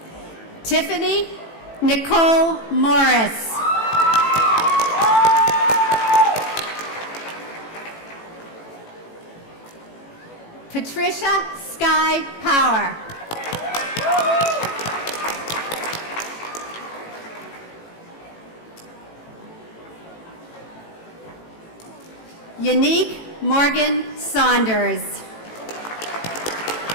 Tiffany Nicole Morris. Patricia Sky Power. Unique Morgan Saunders.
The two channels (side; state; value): right; late; 18 ms